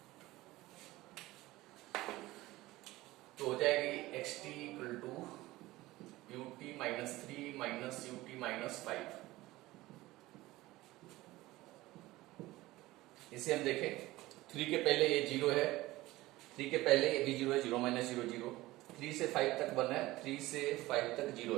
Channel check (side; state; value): left; quieter; 18.3 dB